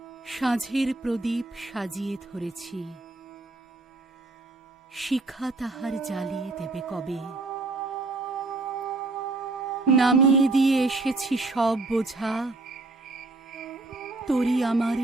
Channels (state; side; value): quieter; left; 3.2 dB